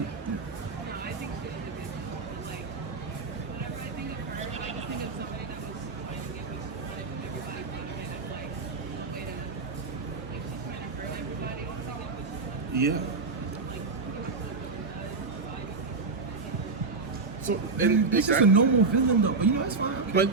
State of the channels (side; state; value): left; quieter; 4.2 dB